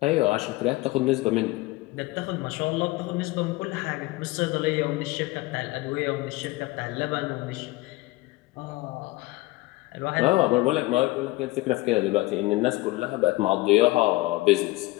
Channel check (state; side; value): quieter; right; 20.4 dB